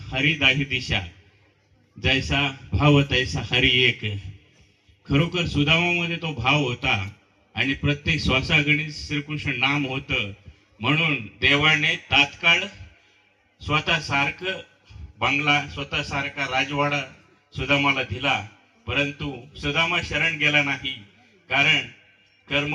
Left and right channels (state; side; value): identical; both; correlation 1.00